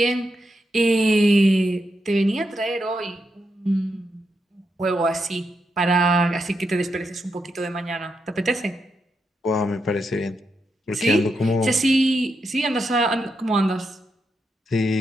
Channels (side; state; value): both; normal; correlation 0.83